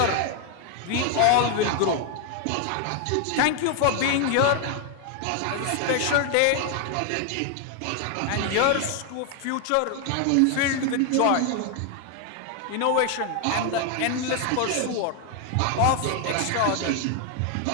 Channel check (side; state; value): both; different; correlation 0.00